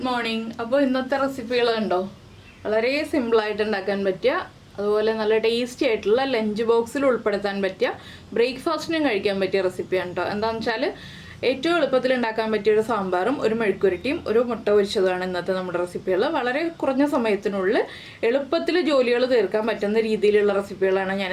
morning. അപ്പോൾ ഇന്നത്തെ റെസിപ്പികൾ കണ്ടോ, വളരെ സിമ്പിളായിട്ട് ഉണ്ടാക്കാൻ പറ്റിയ, അതുപോലെ നല്ല ടേസ്റ്റി ആയിട്ടുള്ള ലഞ്ച് ബോക്സിൽ ഉൾപ്പെടുത്താൻ പറ്റിയ, ബ്രേക്ക്ഫാസ്റ്റിനും കഴിക്കാൻ പറ്റിയ റെസിപ്പിയാണ് കേട്ടോ. എന്താണെന്ന് വെച്ചാൽ ഏറ്റവും എളുപ്പത്തിൽ ഉണ്ടാക്കാൻ പറ്റിയ ഒരു സാമ്പാറും ഒരു മെഴുക്കുരട്ടിയും ഒരു മുട്ട പൊരിച്ചതുമാണ് ഇന്നത്തെ നമ്മുടെ റെസിപ്പികൾ. വളരെ കുറഞ്ഞ സമയത്തിനുള്ളിൽ എളുപ്പത്തിൽ ജോലികൾ തീർക്കാൻ പറ്റുന്ന രീതിയിലുള്ള റെസിപ്പികളാണ് ഞാൻ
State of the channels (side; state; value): both; identical; correlation 1.00